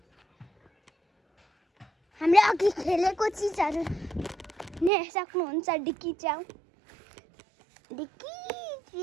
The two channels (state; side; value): drops out; left; at 4.9 s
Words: हामीले अघि खेलेको चिजहरू नै सक्नुहुन्छ डिक्की च्याउ